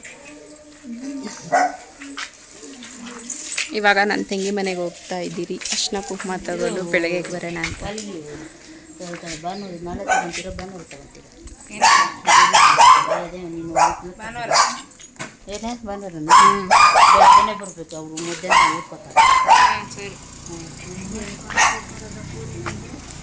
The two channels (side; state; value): both; identical; correlation 1.00